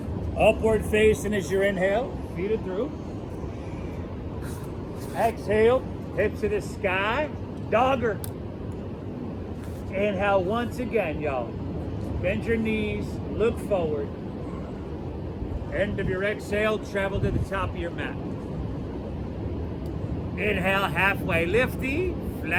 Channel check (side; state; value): both; identical; correlation 1.00